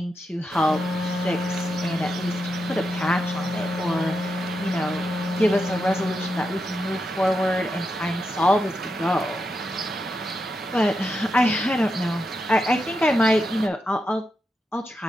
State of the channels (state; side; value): normal; both; correlation 0.86